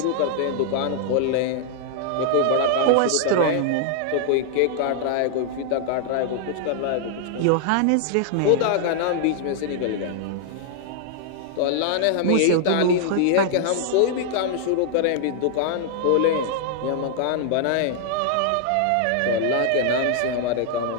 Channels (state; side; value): different; both; correlation 0.00